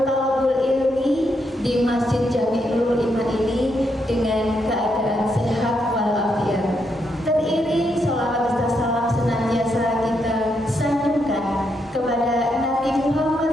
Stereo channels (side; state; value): both; normal; correlation 0.79